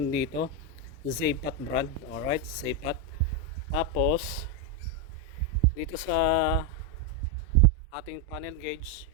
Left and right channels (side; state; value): both; normal; correlation 0.04